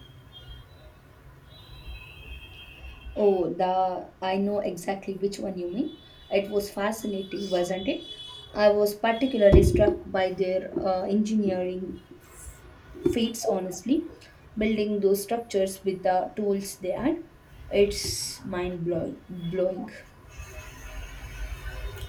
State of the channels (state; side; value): identical; both; correlation 1.00